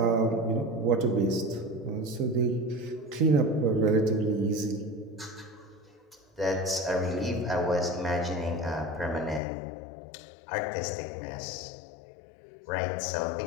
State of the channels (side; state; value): right; drops out; at 9.4 s